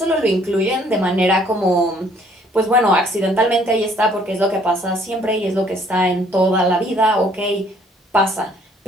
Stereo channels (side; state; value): both; normal; correlation 0.61